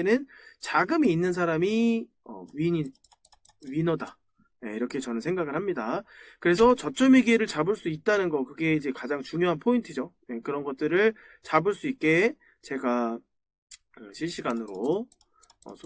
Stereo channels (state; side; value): identical; both; correlation 1.00